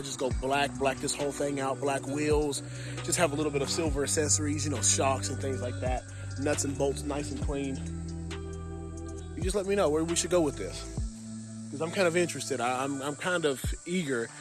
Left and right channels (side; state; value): both; identical; correlation 1.00